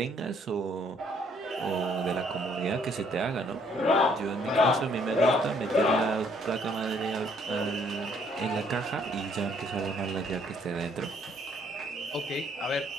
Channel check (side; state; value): both; normal; correlation 0.65